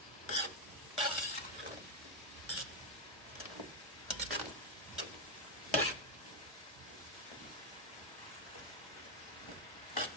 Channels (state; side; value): normal; both; correlation 0.02